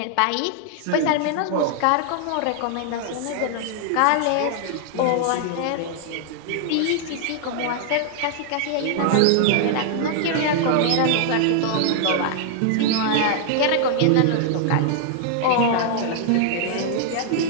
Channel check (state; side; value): different; both; correlation -0.01